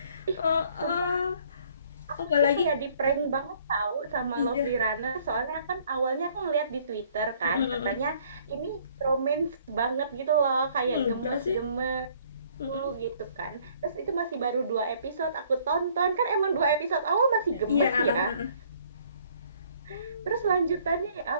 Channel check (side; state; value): both; inverted; correlation -0.60